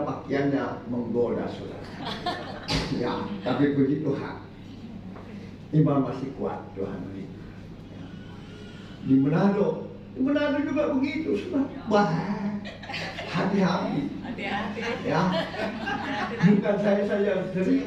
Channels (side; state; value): both; identical; correlation 1.00